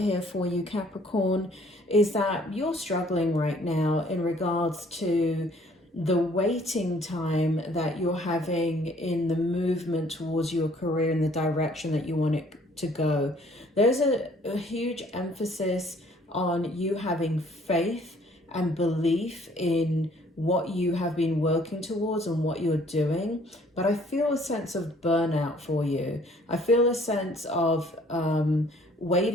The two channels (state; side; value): normal; both; correlation 0.59